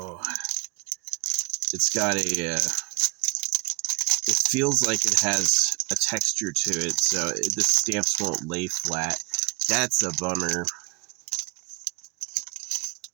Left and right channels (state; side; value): quieter; left; 32.6 dB